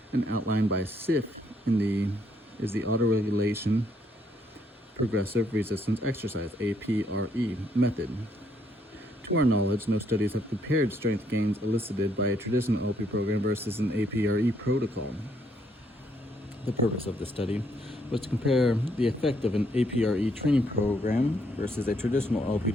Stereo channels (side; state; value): both; normal; correlation 0.71